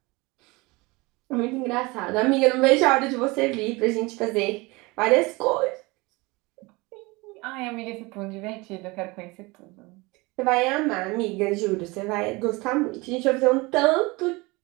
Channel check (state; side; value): quieter; left; 24.3 dB